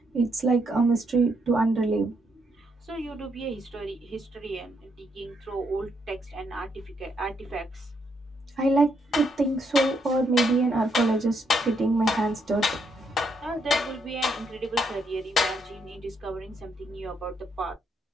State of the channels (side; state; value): both; normal; correlation 0.76